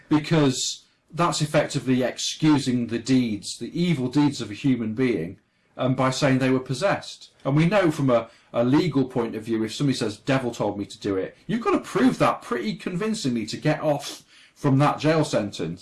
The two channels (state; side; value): identical; both; correlation 1.00